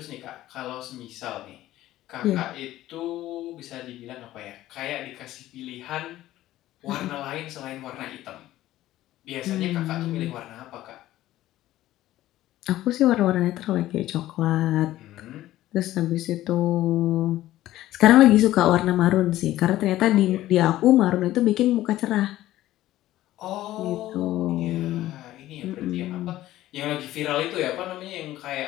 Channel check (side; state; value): right; quieter; 14.8 dB